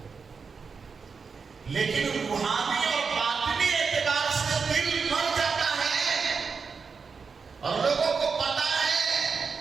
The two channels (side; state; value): left; quieter; 5.3 dB